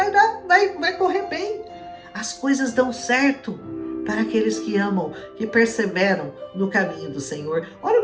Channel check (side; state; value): both; identical; correlation 1.00